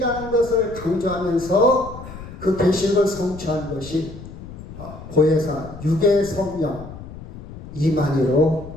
것을 강조하면서 그 계시록을 성취한 것이 보혜사 육의 성령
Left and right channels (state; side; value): noise; left; rumble, 14 dB below the sound